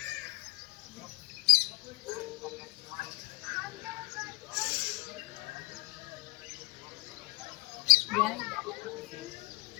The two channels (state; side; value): quieter; right; 26.3 dB